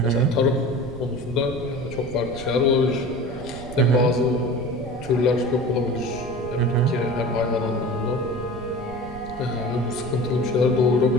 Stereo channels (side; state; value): right; noise; rumble, 14 dB below the sound